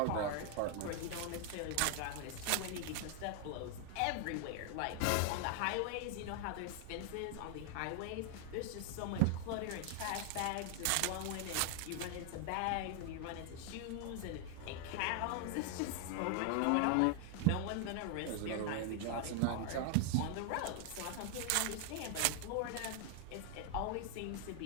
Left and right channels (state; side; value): different; both; correlation 0.00